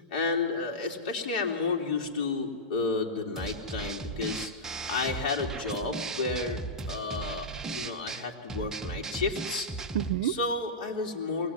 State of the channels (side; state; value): both; normal; correlation -0.11